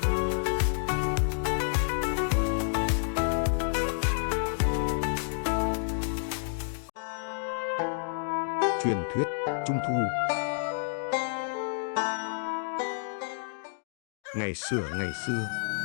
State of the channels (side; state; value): right; silent; digital silence